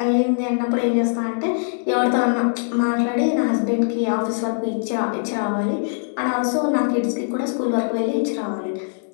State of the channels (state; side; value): silent; right; digital silence